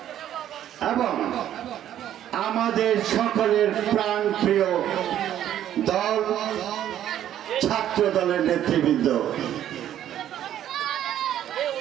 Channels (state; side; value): quieter; left; 11.3 dB